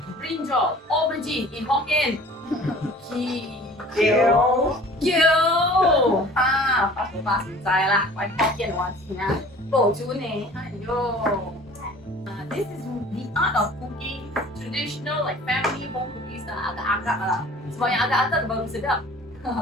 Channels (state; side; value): normal; both; correlation 0.46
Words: brinjal, aubergine in Hokkien. Kyo. Pas sai lah. Why Hokkien 話字啊？保住你，This is the art of cooking, traditional family home cooking style, agak-agak lah. Sebab yang agak-agak baru sedap.